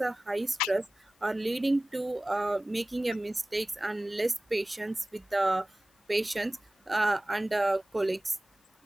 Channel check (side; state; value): both; normal; correlation 0.97